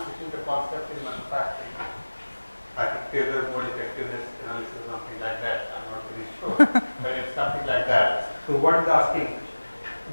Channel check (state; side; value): inverted; both; correlation -1.00